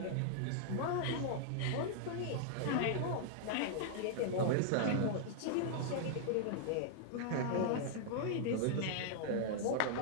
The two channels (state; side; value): different; both; correlation -0.01